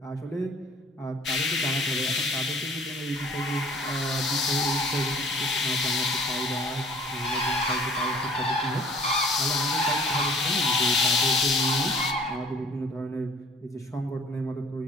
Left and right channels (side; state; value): both; normal; correlation 0.52